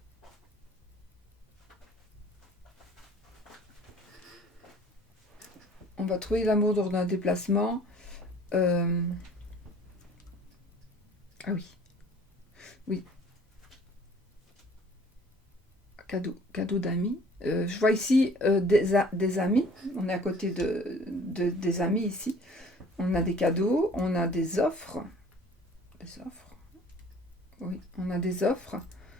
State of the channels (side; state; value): both; normal; correlation 0.51